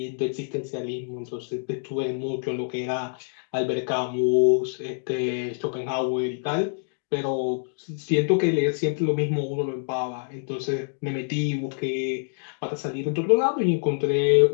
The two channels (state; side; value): silent; right; digital silence